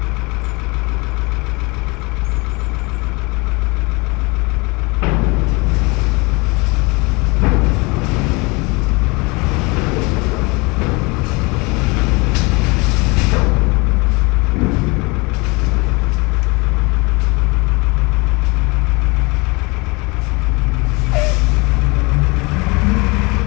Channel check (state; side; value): quieter; right; 26.8 dB